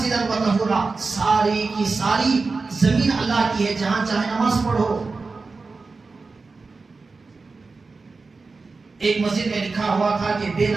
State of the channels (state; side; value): quieter; left; 4.1 dB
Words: وطہورا، ساری کی ساری زمین اللہ کی ہے، جہاں چاہے نماز پڑھو۔ ایک مسجد میں لکھا ہوا تھا کہ بے